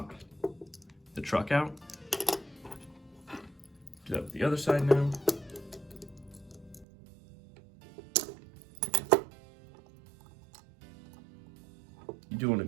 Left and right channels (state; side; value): drops out; left; at 6.9 s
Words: the truck out. Do that with the other side now. You do want to